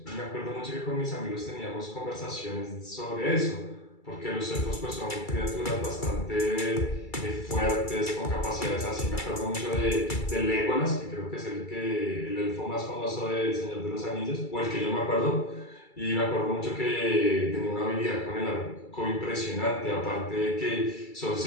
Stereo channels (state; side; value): late; right; 2.3 ms